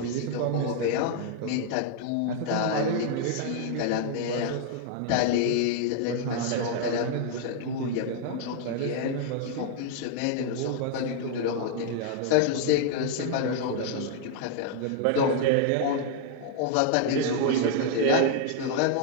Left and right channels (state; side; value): different; both; correlation 0.00